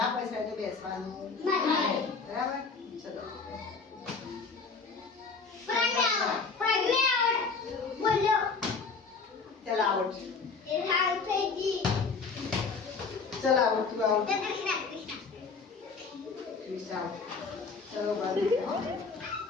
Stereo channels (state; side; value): quieter; right; 4.8 dB